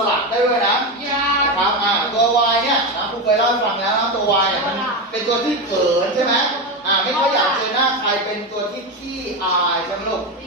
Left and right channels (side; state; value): both; normal; correlation 0.15